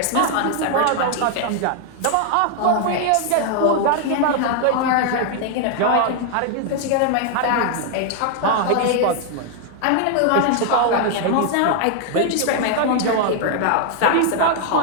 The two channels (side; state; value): both; different; correlation 0.00